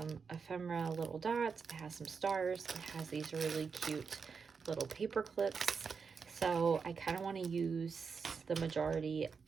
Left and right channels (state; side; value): quieter; left; 5.6 dB